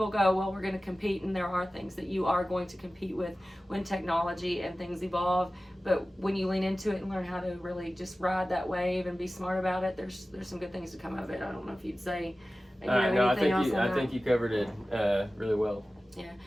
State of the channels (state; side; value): normal; both; correlation 0.96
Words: go, well, we're going to compete, and there are things that you are going to compete with when technology and things evolve. But when you lean into it and learn how to really just ride that wave and be smart about it, there's some good things to come of it. I don't know if you'd say, no, I think you covered it really well. Yeah,